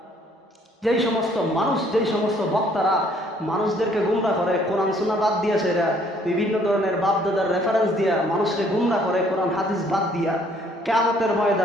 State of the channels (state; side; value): normal; both; correlation 0.62